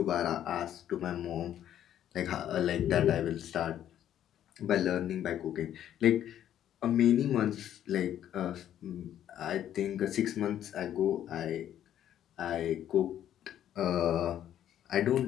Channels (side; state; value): right; quieter; 10.9 dB